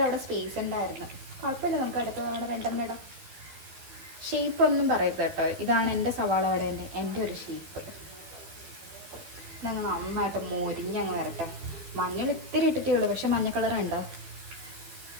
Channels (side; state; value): left; late; 13 ms